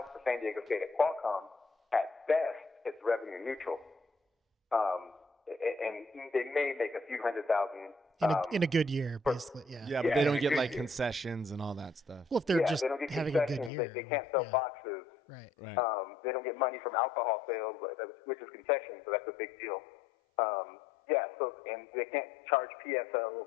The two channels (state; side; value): drops out; right; at 13.7 s